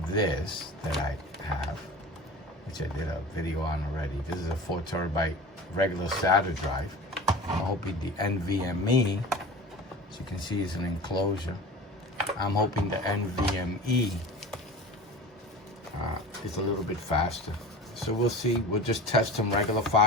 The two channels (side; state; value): both; normal; correlation 0.36